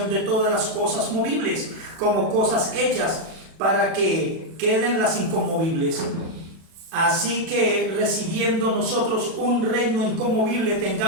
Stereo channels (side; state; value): left; late; 36 ms